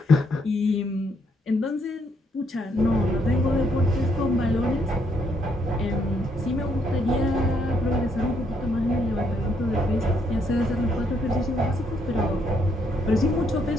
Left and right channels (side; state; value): both; normal; correlation 0.73